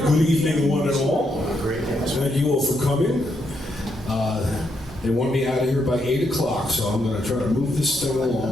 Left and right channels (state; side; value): normal; both; correlation 0.78